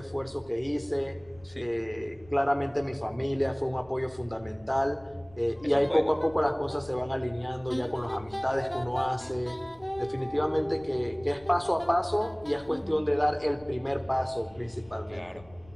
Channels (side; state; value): left; noise; rumble, 24 dB below the sound